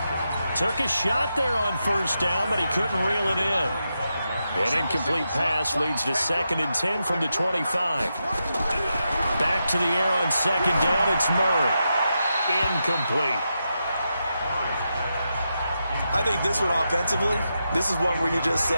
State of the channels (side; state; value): both; inverted; correlation -0.86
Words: Took a shot there on 1st down, but he couldn't reel it in. An incomplete pass leads to 2nd and 10 from the 25. Back to the air on 2nd down. It's Murray. Incomplete. I think this one offensively, this is one where you just